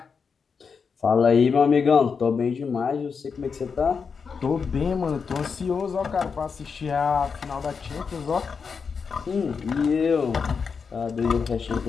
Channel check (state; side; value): quieter; right; 5.7 dB